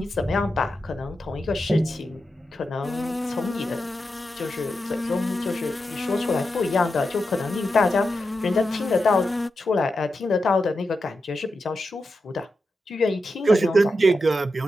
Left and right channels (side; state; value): both; normal; correlation 0.88